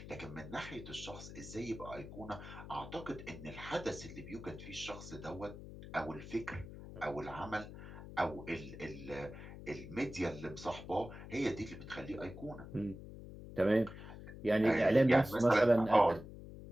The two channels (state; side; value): noise; left; hum, 12 dB below the sound